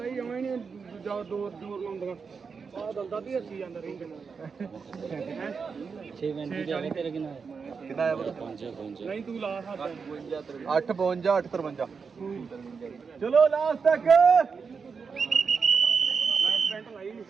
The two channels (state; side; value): quieter; left; 5.5 dB